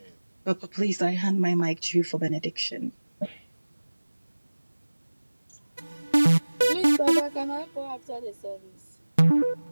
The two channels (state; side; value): inverted; both; correlation -1.00